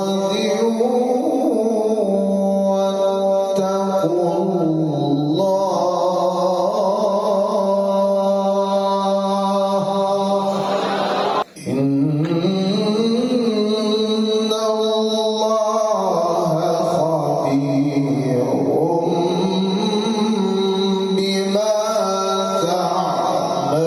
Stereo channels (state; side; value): identical; both; correlation 1.00